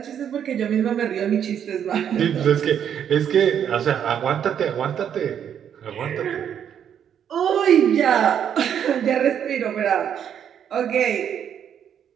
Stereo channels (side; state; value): left; quieter; 8.9 dB